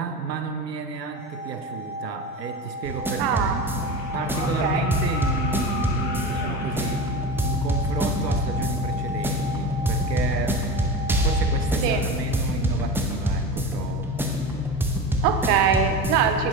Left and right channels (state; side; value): normal; both; correlation 0.27